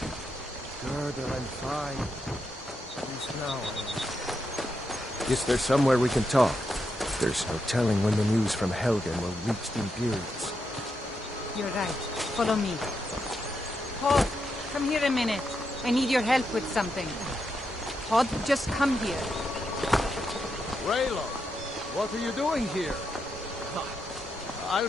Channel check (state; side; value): normal; both; correlation 0.83